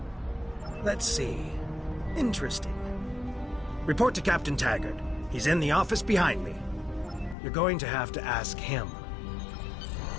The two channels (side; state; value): right; drops out; at 7.4 s